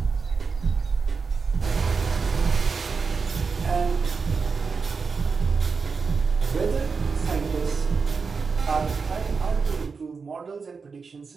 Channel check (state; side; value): quieter; left; 5.0 dB